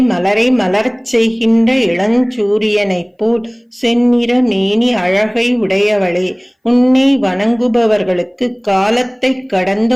மலரை மலரச் செய்கின்ற இளஞ்சூரியனைப் போல் செந்நிற மேனி அழகை உடையவளே, உன்னை வணங்குபவர்களுக்கு காலத்தை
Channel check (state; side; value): identical; both; correlation 1.00